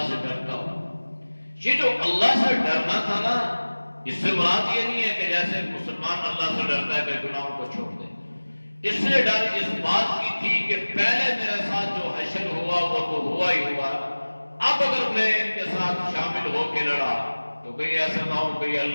سے ڈرتا ہوں۔ یہ جو اللہ سے ڈرنا تھا نا، اس سے مراد یہ نہیں ہے کہ جیسے مسلمان اللہ سے ڈرتا ہے کہ گناہوں کو چھوڑ دے۔ اس سے ڈر اس بات کی تھی کہ پہلے میرے ساتھ جو حشر ہوا وہ تو ہوا ہی ہوا، اب اگر میں ان کے ساتھ شامل ہو کے لڑا تو کہیں ایسا نہ ہو کہ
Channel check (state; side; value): inverted; both; correlation -1.00